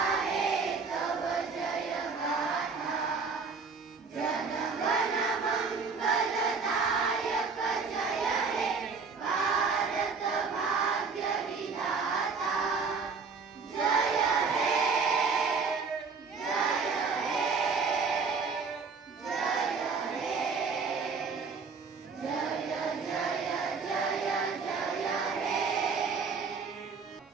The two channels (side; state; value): left; quieter; 5.0 dB